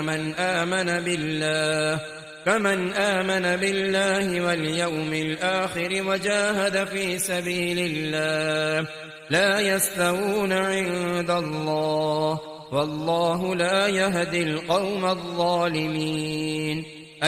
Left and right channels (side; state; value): both; identical; correlation 1.00